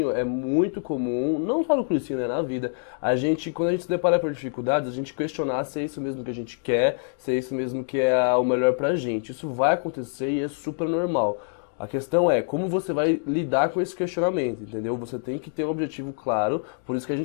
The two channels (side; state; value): right; silent; digital silence